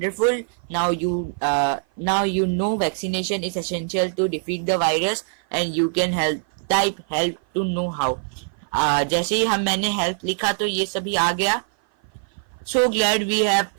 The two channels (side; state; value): left; silent; 56 dB below the other